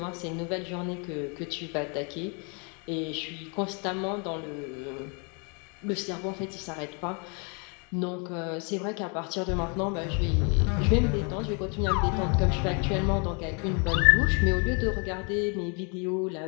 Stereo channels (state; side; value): quieter; right; 35.6 dB